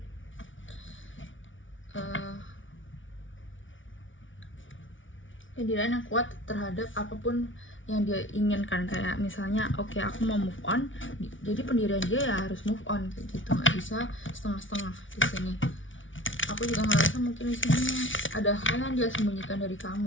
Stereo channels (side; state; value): right; late; 0.56 ms